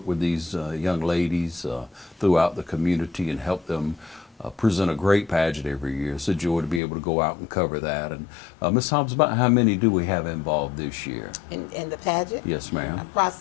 with these young ladies throughout the community and helped them present a great pageant every year. It's a joy to be able to go out and cover that. And Ms. Hobbs, about how many do we have involved this year? In the pageant? Yes, ma'am.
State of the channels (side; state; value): right; drops out; at 6.8 s